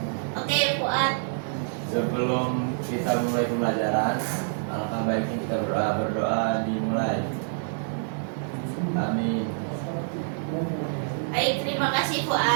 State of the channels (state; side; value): silent; left; digital silence